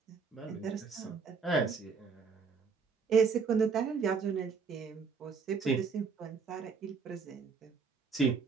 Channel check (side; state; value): left; quieter; 5.3 dB